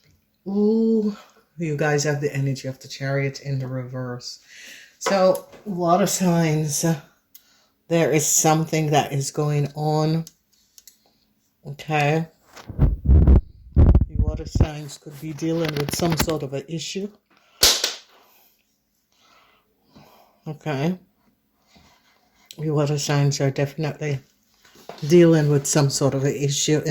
Ooh, you guys have the energy of the Chariot in the reverse. So, water signs, there is something that is going on. Okay. The water signs could be dealing with some sort of an issue. Okay. The water signs are definitely dealing with some sort of an issue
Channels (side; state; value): both; identical; correlation 1.00